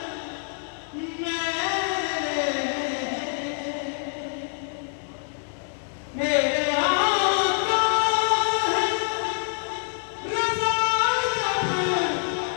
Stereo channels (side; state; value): right; silent; 61 dB below the other